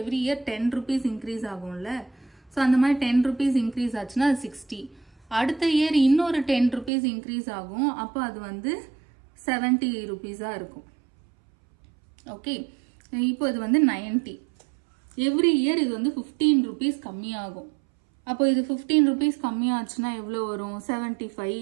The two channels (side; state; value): left; drops out; at 6.9 s